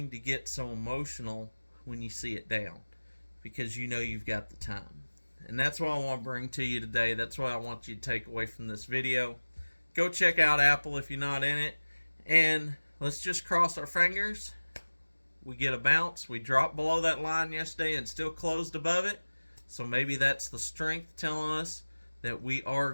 to get so emotional when you see it down, because you know you've got the time. And that's what I want to bring to you today. That's what I want you to take away from this video. Go check out Apple if you're not in it, and let's just cross our fingers. We get a bounce. We dropped below that line yesterday and still closed above it. So maybe that's the strength telling us that we are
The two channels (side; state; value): both; inverted; correlation -1.00